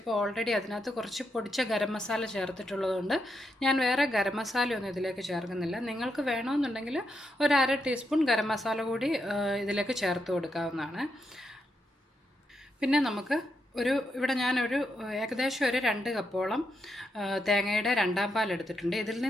ഓൾറെഡി അതിനകത്ത് കുറച്ച് പൊടിച്ച ഗരം മസാല ചേർത്തിട്ടുള്ളതുകൊണ്ട് ഞാൻ വേറെ ഗരം മസാലയൊന്നും ഇതിലേക്ക് ചേർക്കുന്നില്ല. നിങ്ങൾക്ക് വേണമെന്നുണ്ടെങ്കിൽ ഒരു 1/2 ടീസ്പൂൺ ഗരം മസാല കൂടി ഇതിലേക്ക് ചേർത്ത് കൊടുക്കാവുന്നതാണ്. പിന്നെ നമുക്ക് ഇവിടെ ഞാനൊരു ഏകദേശം ഒരു 2 കപ്പോളം തേങ്ങയുടെ 2-ാം പാൽ എടുത്തിട്ടുണ്ട്. ഇതിൽ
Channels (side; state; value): both; normal; correlation 0.82